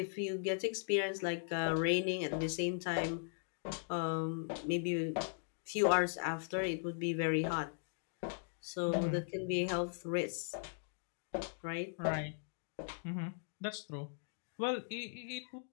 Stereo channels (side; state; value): right; silent; digital silence